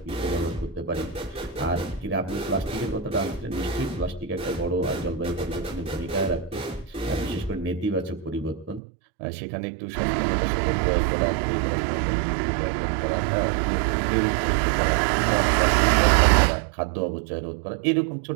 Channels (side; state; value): left; drops out; at 8.8 s